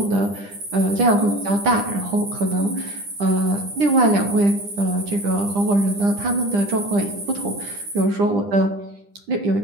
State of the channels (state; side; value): late; left; 10 ms